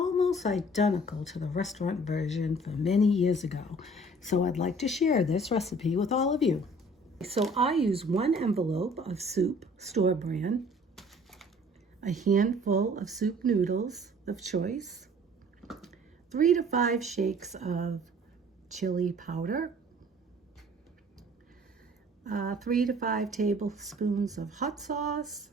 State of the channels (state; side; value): normal; both; correlation 0.52